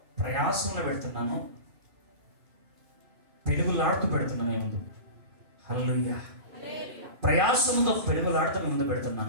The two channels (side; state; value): left; late; 2.4 ms